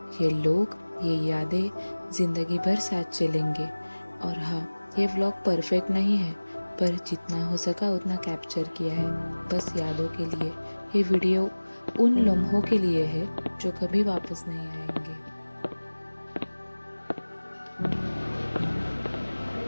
ये लोग, ये यादें जिंदगी भर साथ चलेंगे। और हाँ, ये व्लॉग परफेक्ट नहीं है, पर जितना हो सका उतना कैप्चर किया है, बस यादों के लिए। ये वीडियो उन लम्हों के लिए है जो कभी वापस नहीं आएंगे।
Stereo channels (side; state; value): both; inverted; correlation -1.00